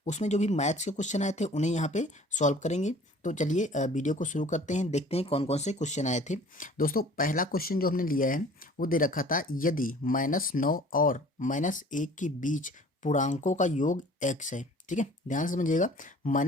उसमें जो भी मैथ्स के क्वेश्चन आए थे उन्हें यहाँ पे सॉल्व करेंगे। तो चलिए वीडियो को शुरू करते हैं, देखते हैं कौन कौन से क्वेश्चन आए थे। दोस्तों पहला क्वेश्चन जो हमने लिया है वो दे रखा था, यदि -9 और -1 के बीच पूर्णांकों का योग x है। ठीक है, ध्यान से समझिएगा।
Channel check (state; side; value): normal; both; correlation 0.49